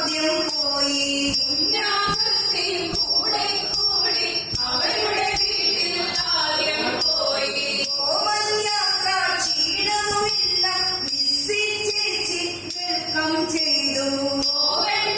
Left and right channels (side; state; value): both; identical; correlation 1.00